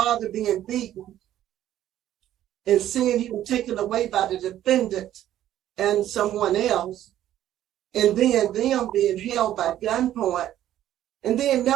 being beaten, and seeing him taken away by the defendant and someone else, and then them being held by gunpoint, and then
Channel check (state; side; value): quieter; left; 12.3 dB